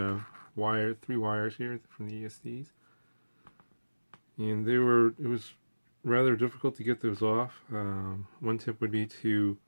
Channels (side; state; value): both; inverted; correlation -1.00